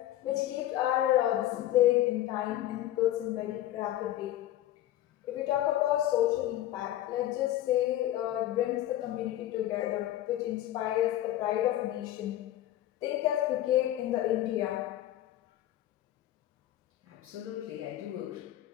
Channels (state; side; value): quieter; right; 13.5 dB